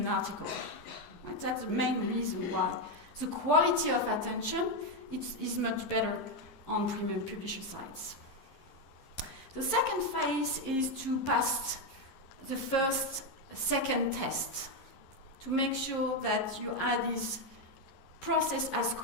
article. Right? That's the main reason why. The quality of attention is much better on premium publisher sites. The second phase is to pass the second test, to make sure that your ad is processed as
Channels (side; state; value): right; late; 11 ms